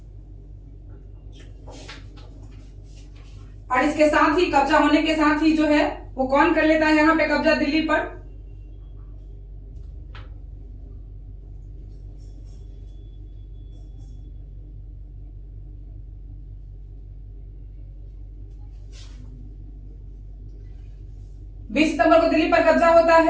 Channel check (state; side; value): identical; both; correlation 1.00